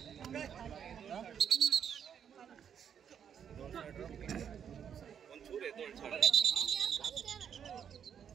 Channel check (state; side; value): quieter; left; 8.2 dB